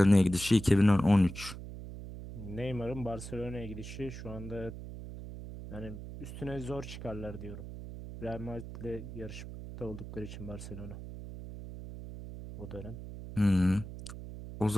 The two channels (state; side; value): noise; right; hum, 11 dB below the sound